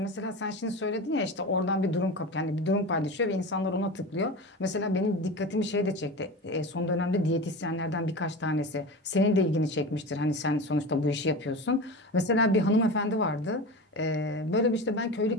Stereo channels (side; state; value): both; normal; correlation 0.28